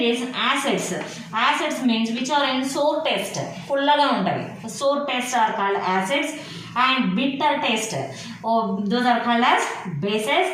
acids means which are in sour taste. Fullaga untavi. Sour taste are called acids and bitter taste. Those are called as bases,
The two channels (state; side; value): identical; both; correlation 1.00